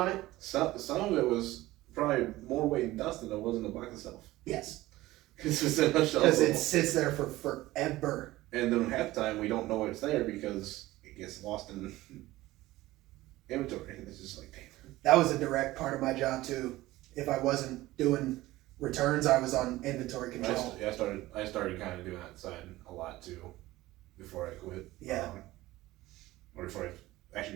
it. Some of it was probably more weight and dust than it was in the box itself. Yes. Because it sits there for forever. And then half the time we don't know it's there because it gets lost in inventory. It's just like, damn. That was a direct part of my job too. If I wasn't doing returns, I was on inventory control. I started kind of doing that side a lot too before I quit. Yeah. Or before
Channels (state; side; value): quieter; left; 17.5 dB